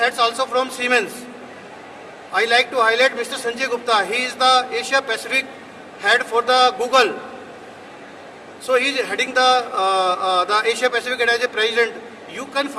also from Siemens. I like to highlight Mr. Sanjay Gupta. He is the Asia Pacific head for the Google. So he is heading the Asia Pacific as a president. You can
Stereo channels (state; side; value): identical; both; correlation 1.00